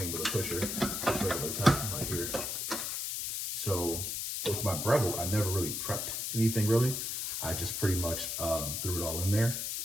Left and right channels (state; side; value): noise; left; hiss, 2 dB below the sound